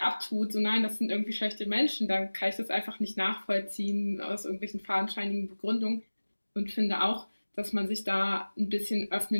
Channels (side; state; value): both; inverted; correlation -1.00